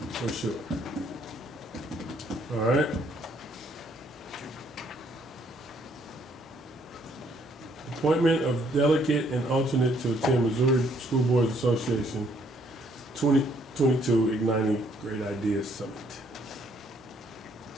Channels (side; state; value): both; normal; correlation 0.67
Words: for sure. All right. Appointment of delegate and alternate to attend Missouri School Boards Association 2022 Igniting Great Ideas Summit.